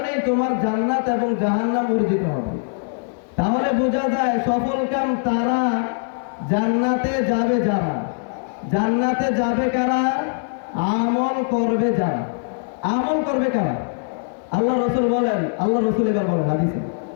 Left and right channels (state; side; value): silent; right; 61 dB below the other